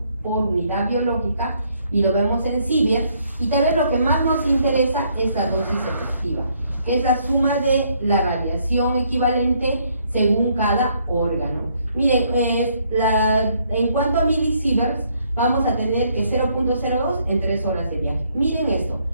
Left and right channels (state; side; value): inverted; both; correlation -0.69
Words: por unidad biológica, y lo vemos en Siever. Y tal vez lo que más nos interesa es la dosis efectiva, que es la suma de la radiación equivalente según cada órgano. Miren, en cuanto a milisieverts, vamos a tener que 0.02 en 3 horas de viaje. Miren esto,